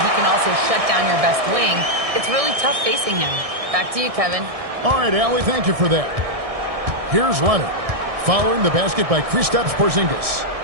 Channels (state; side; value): late; left; 1.6 ms